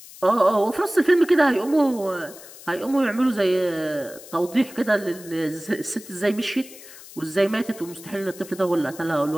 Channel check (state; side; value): noise; left; hiss, 18 dB below the sound